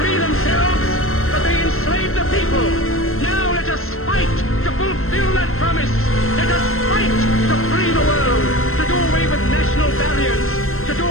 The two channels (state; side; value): late; right; 0.62 ms